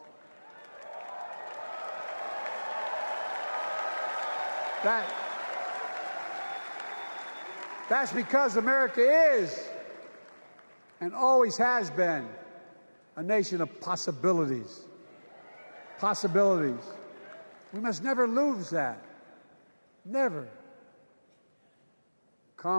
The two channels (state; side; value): inverted; both; correlation -1.00